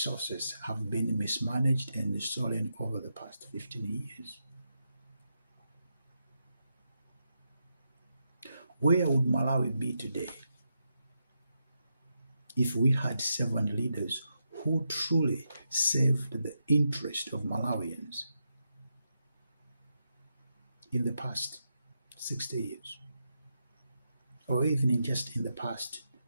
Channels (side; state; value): both; inverted; correlation -0.85